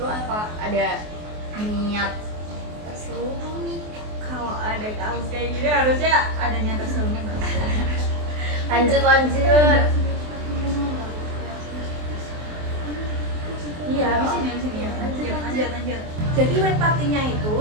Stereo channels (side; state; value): left; late; 24 ms